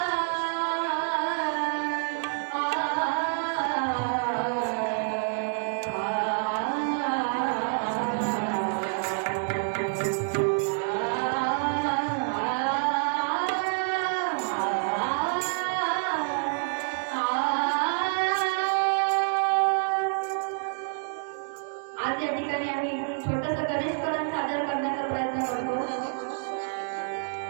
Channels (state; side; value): silent; left; digital silence